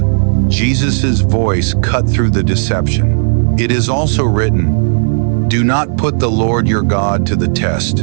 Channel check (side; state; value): left; silent; digital silence